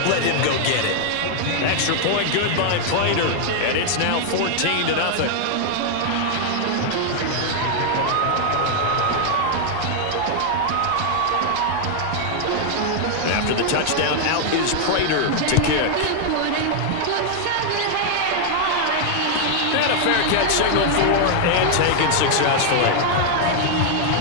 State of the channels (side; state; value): both; different; correlation 0.00